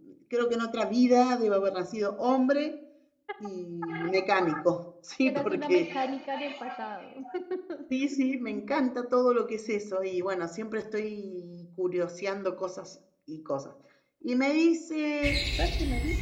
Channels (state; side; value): identical; both; correlation 1.00